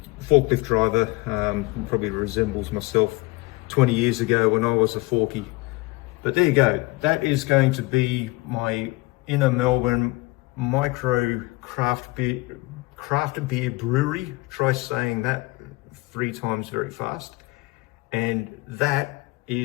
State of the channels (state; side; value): quieter; right; 22.7 dB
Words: forklift driver, probably resembles myself 20 years ago when I was a forky. But there you go. That is going to be my inner Melbourne micro craft beer brewery. Try saying that 3 times very fast. And that